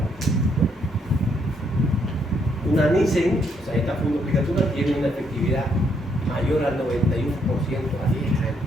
Una Nissen, o sea, esta fundoplicatura tiene una efectividad mayor al 91% a 10 años.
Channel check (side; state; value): both; normal; correlation 0.73